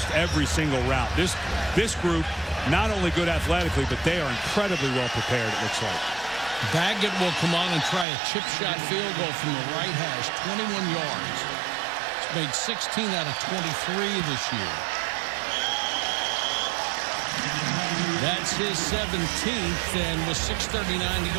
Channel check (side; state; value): left; drops out; at 8.1 s